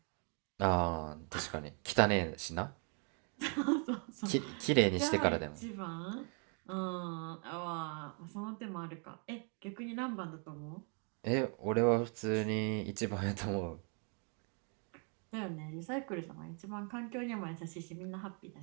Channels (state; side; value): quieter; left; 38.9 dB